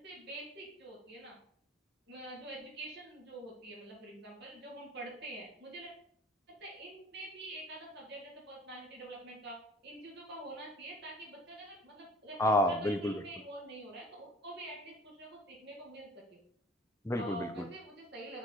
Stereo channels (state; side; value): normal; both; correlation 0.48